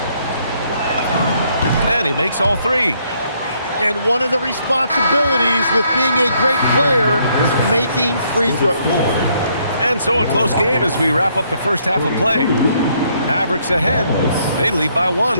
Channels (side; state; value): both; inverted; correlation -0.70